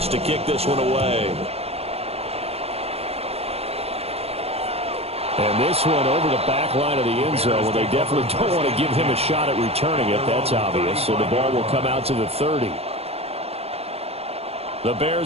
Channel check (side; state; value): left; late; 0.29 ms